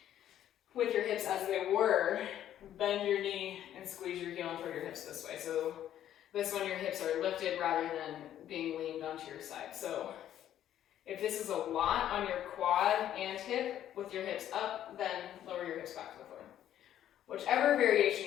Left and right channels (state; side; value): quieter; right; 11.3 dB